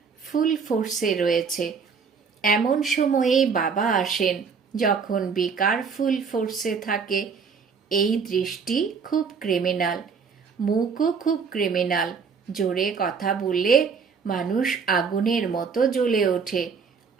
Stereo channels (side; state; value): left; quieter; 5.8 dB